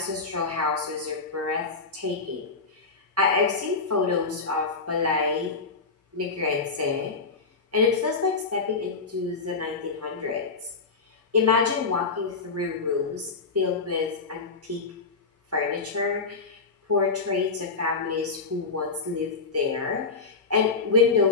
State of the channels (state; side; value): quieter; right; 4.3 dB